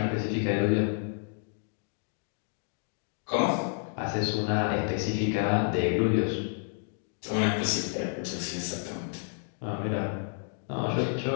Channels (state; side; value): silent; right; 58 dB below the other